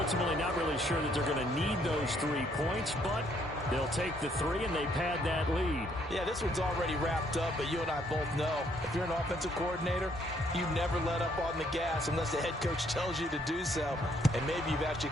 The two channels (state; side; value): normal; both; correlation 0.68